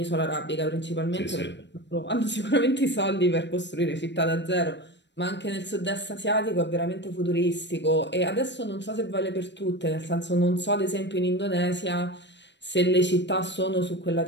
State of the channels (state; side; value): late; right; 0.52 ms